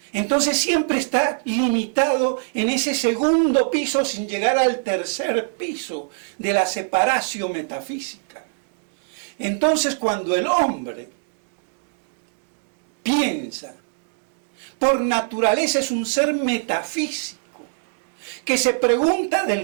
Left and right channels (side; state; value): left; silent; digital silence